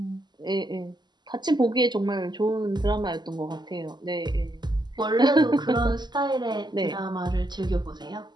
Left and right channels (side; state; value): left; late; 0.21 ms